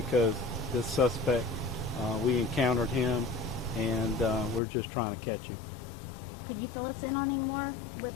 this suspect, we encountered him, and we're just trying to catch him. Could you fill us in on any more with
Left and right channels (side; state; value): right; drops out; at 4.6 s